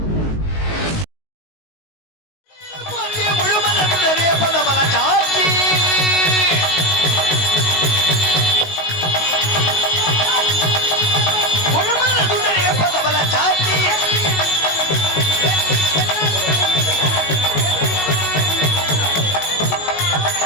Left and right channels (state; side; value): late; right; 19 ms